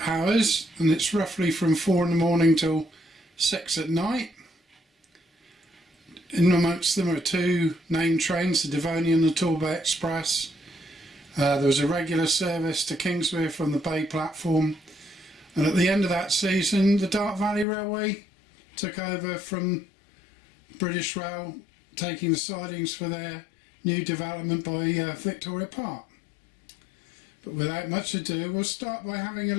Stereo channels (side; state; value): right; drops out; at 17.7 s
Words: hours, and it's roughly from 4 in the morning till 6 at night. In amongst them are two named trains, the Devonian and the Torbay Express. There was a regular service to Kingswear from the Bay platform, and at the end of that season the Dart Valley Railway took over from British Rail, taking the sidings for their new development by Victoria Park. But without much ado, we'll start by having a